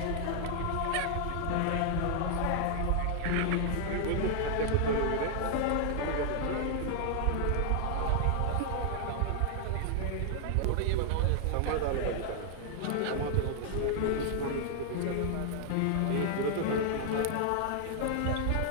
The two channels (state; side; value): different; both; correlation 0.00